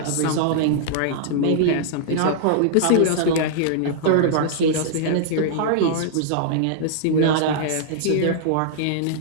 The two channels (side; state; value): both; different; correlation -0.01